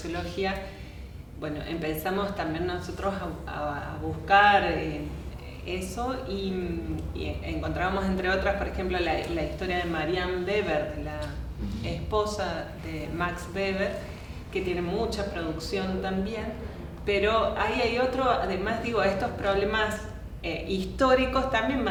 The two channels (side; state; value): both; identical; correlation 1.00